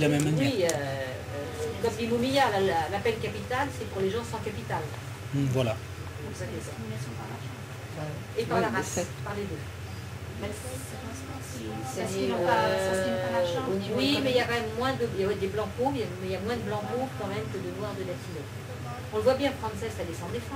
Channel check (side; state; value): both; identical; correlation 1.00